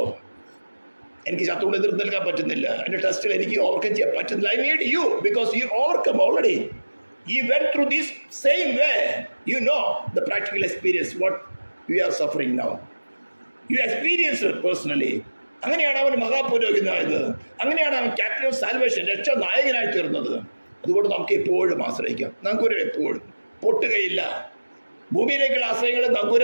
എനിക്ക് ശത്രുവിനെ എതിർത്ത് നിൽക്കാൻ പറ്റുന്നില്ല, എൻ്റെ ടെസ്റ്റിൽ എനിക്ക് ഓവർകം ചെയ്യാൻ പറ്റുന്നില്ല. I need you because you overcome already. He went through this same way. You know the practical experience what we are suffering now. You experienced it personally. അങ്ങനെയാണ് അവൻ മഹാപുരോഹിതനായത്. അങ്ങനെയാണ് അവൻ ക്യാപ്റ്റൻ ഓഫ് സാൽവേഷൻ, രക്ഷാ നായകനായി തീർന്നത്. അതുകൊണ്ട് നമുക്ക് എപ്പോഴും ആശ്രയിക്കാം. നങ്കൂരം എപ്പോഴും പൊട്ടുകയില്ല. ഭൂമിയിലേക്കുള്ള ആശ്രയങ്ങൾ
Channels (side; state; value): both; inverted; correlation -1.00